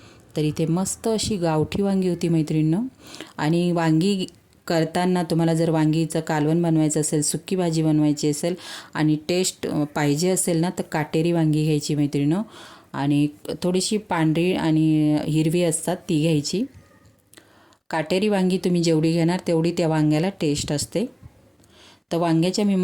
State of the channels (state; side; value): identical; both; correlation 1.00